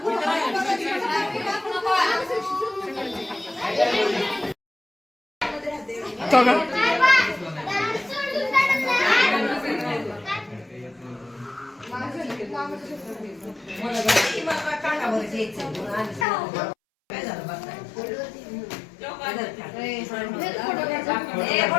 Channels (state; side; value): drops out; right; at 16.2 s